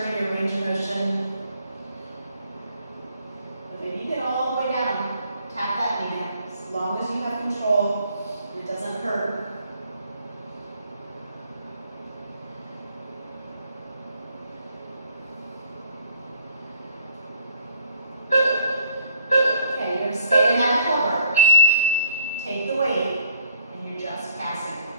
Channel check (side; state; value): both; inverted; correlation -0.61